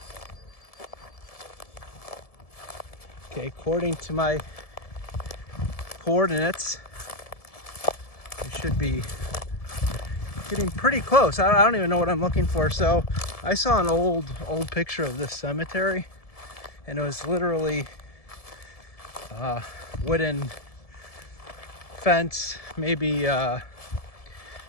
Okay, according to my coordinates, we should be getting pretty close. I don't even know what I'm looking for. So I saw an old picture of this cemetery, and it was literally wooden fence, maybe I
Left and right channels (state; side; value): late; right; 1.7 ms